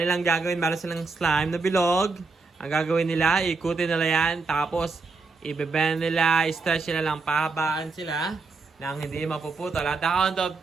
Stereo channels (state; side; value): quieter; left; 4.1 dB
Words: gagawin, meron silang slime na bilog. Ang gagawin nila, ikutin nila yan. Tapos, ibebend nila, stretch nila lang, pahabaan sila nang hindi mapuputol. At the count of